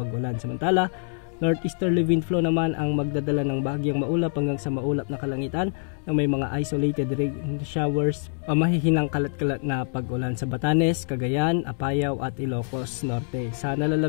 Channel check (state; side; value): silent; right; digital silence